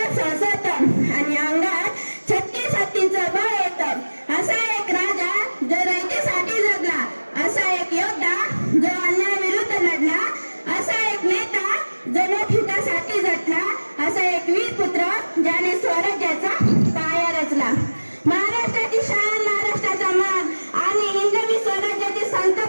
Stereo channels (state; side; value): inverted; both; correlation -1.00